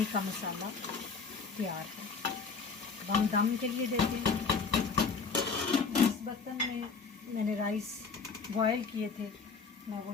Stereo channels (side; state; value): right; quieter; 5.0 dB